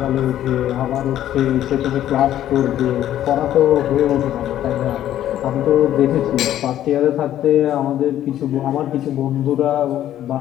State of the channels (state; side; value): quieter; right; 12.0 dB